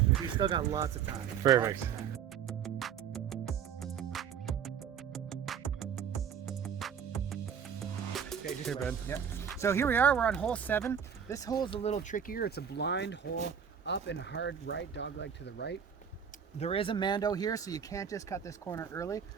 We still got lots of time. Perfect. Lots of time. Okay, just Here, Ben. Yep. So here we are. We're on hole 7. This hole is a little trickier. It's a blind hole, up and hard right, dogleg to the right. There is a Mando here, so you can't just cut this corner early.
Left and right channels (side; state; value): left; quieter; 7.8 dB